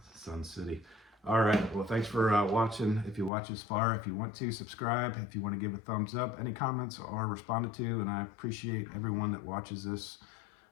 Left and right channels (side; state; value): right; drops out; at 3.3 s